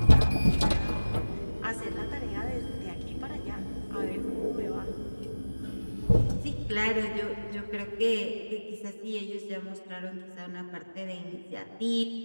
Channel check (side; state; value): both; inverted; correlation -1.00